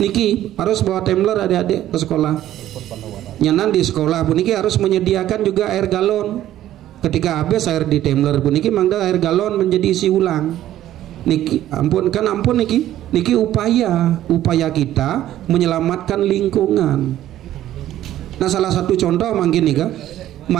Niki harus bawa tumbler adik-adik ke sekolah. Nyanan di sekolah pun niki harus menyediakan juga air galon. Ketika habis air di tumbler pun niki mangda air galon menjadi isi ulang. Niki ampun kan ampun niki upaya kita menyelamatkan lingkungan. Nah, salah satu contoh mungkin nih kan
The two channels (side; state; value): left; quieter; 12.9 dB